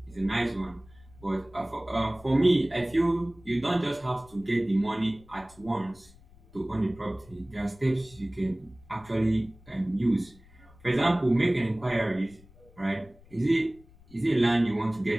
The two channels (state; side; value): noise; left; rumble, 25 dB below the sound